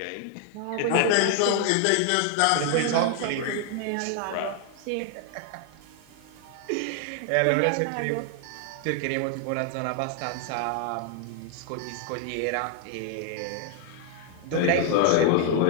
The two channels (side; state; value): both; different; correlation 0.00